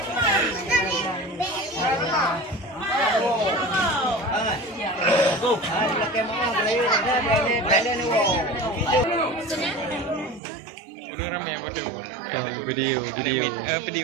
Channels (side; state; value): left; drops out; at 10.4 s